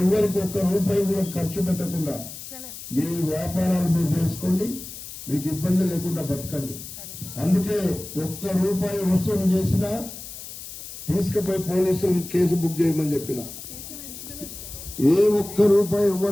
ఎవరికి ఒక్క రూపాయి కూడా ఖర్చు పెట్టకుండా మీ వ్యాపారాలు మీరు చేసుకోండి, మీకు ఇబ్బంది లేకుండా బతకండి. అందుకే ఒక్క రూపాయి వసూలు చేసినా తీసుకుపోయి పోలీసులు కేసు బుక్ చేయమని చెప్పిన. ఏ ఒక్క రూపాయి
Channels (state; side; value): noise; left; hiss, 12 dB below the sound